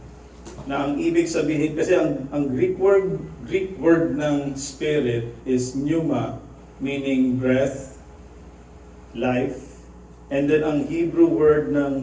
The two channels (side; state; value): both; identical; correlation 1.00